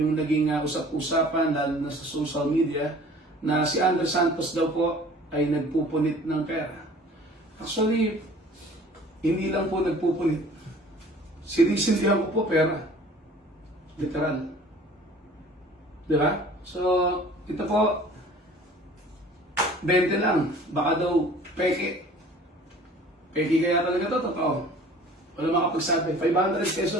naging usap-usapan lalo na sa social media na si Andre Santos daw po ay nagpupunit ng pera. Actually, hindi lang po nagpupunit. Sinisindihan ko po pera. Literal. Diba? So, ito po, 20 lang. Baka daw peke. Peke kaya talaga ito, totoo. Wala makapagsabi. 500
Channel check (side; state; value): both; normal; correlation 0.48